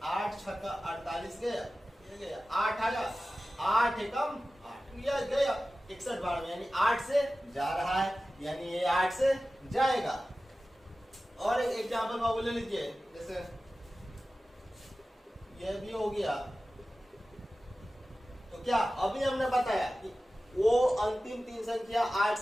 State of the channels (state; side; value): normal; both; correlation 0.95